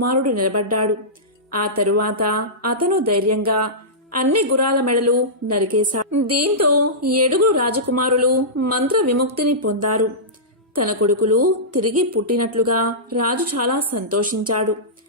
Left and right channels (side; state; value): both; normal; correlation -0.17